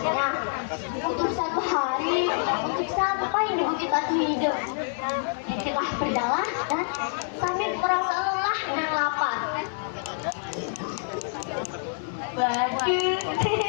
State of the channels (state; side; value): silent; right; 60 dB below the other